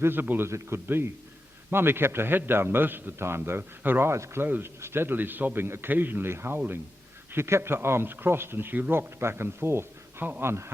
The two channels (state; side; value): normal; both; correlation 0.90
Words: as it could be. Mummy kept her head down most of the time, though, her eyes closed, steadily sobbing, occasionally howling. She kept her arms crossed and she rocked back and forth. How